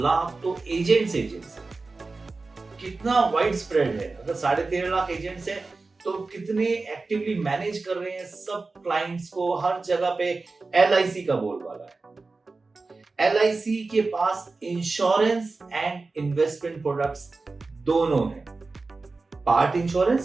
लाख तो एजेंट्स हैं। कितना वाइड स्प्रेड है। अगर 13.5 लाख एजेंट्स हैं तो कितने एक्टिवली मैनेज कर रहे हैं सब क्लाइंट्स को, हर जगह पे LIC का बोलबाला है। LIC के पास इंश्योरेंस एंड इन्वेस्टमेंट प्रोडक्ट्स दोनों हैं, पार्ट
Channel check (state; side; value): quieter; left; 3.8 dB